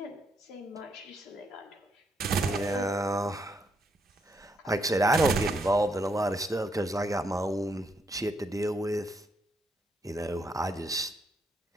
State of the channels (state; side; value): normal; both; correlation 0.76